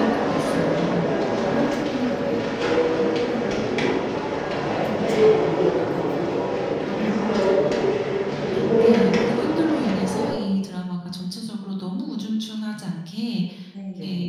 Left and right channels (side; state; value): both; identical; correlation 1.00